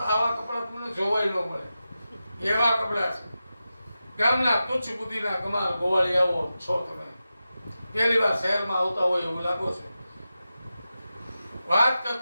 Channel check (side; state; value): both; inverted; correlation -0.92